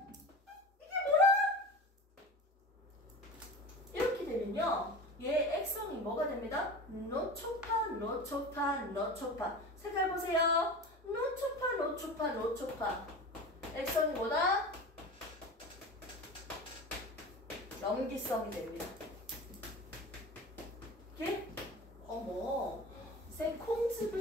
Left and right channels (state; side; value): normal; both; correlation 0.32